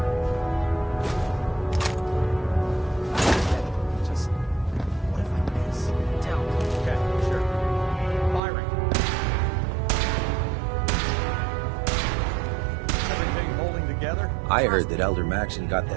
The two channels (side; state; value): left; drops out; at 8.4 s